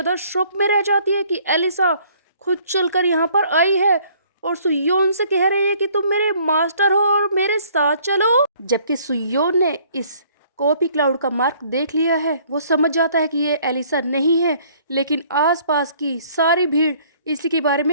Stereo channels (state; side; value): inverted; both; correlation -0.59